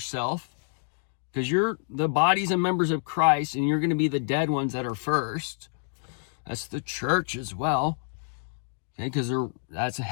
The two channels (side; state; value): right; silent; digital silence